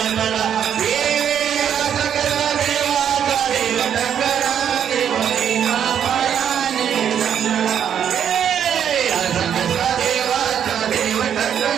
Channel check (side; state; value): left; quieter; 8.9 dB